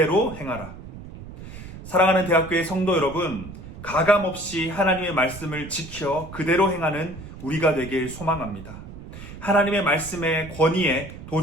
행하라. 사랑하는 대학교의 성도 여러분, 가감없이 하나님의 말씀을 지켜 그대로 행하는 우리가 되길 소망합니다. 하나님의 말씀의 권위에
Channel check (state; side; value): noise; right; rumble, 14 dB below the sound